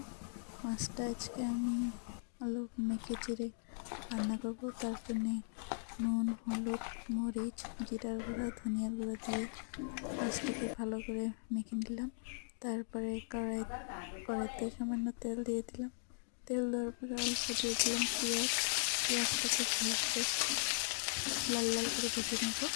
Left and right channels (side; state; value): right; silent; digital silence